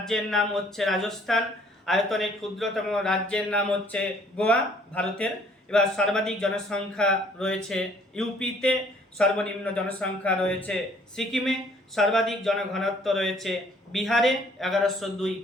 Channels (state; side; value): normal; both; correlation 0.60